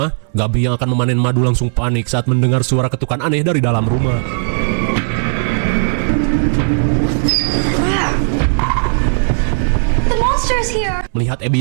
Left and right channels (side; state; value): left; silent; digital silence